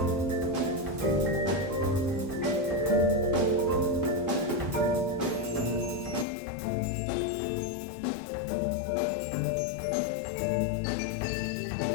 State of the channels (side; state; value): right; drops out; at 6.2 s